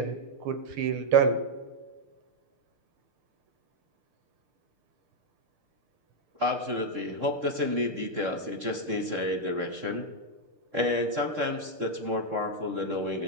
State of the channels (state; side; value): late; left; 6.6 ms